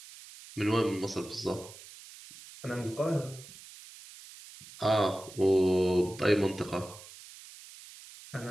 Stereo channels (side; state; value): right; noise; hiss, 18 dB below the sound